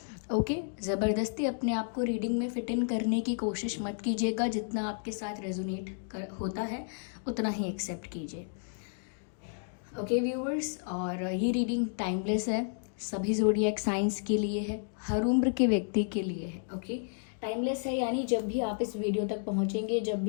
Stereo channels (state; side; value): silent; right; digital silence